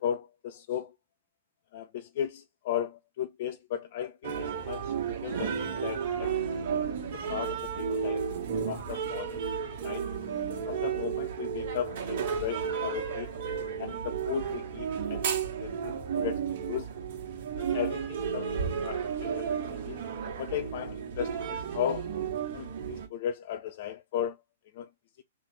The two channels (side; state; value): both; inverted; correlation -0.43